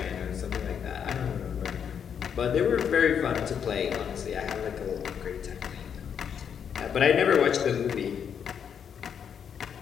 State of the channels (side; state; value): right; quieter; 7.8 dB